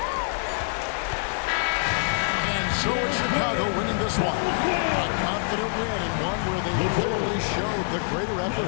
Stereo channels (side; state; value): right; silent; digital silence